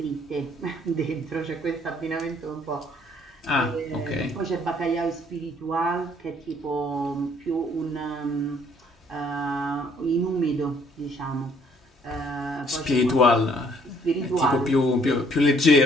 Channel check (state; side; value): normal; both; correlation 0.63